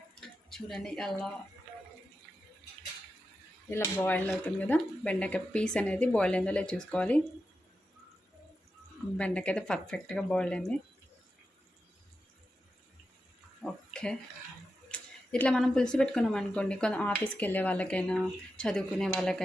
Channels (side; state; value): both; normal; correlation 0.90